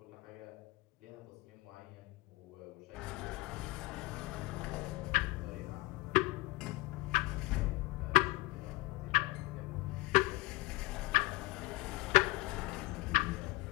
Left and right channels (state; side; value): quieter; right; 21.8 dB